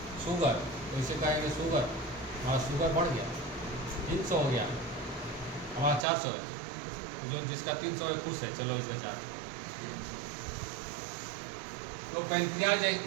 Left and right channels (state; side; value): drops out; left; at 6.1 s